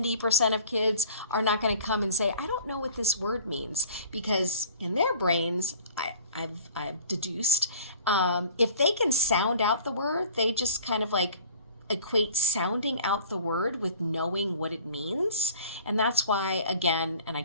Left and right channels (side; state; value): both; inverted; correlation -0.47